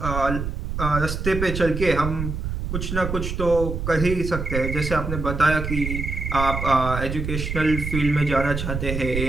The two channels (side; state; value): right; noise; rumble, 4 dB below the sound